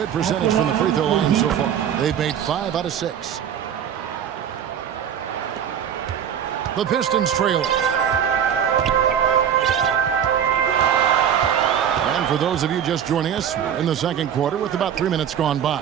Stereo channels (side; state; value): left; quieter; 8.9 dB